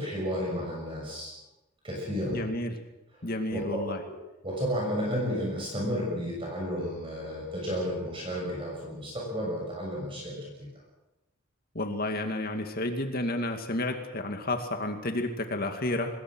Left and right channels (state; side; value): normal; both; correlation 0.34